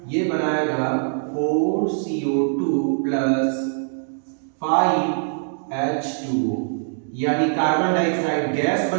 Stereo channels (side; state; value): left; silent; digital silence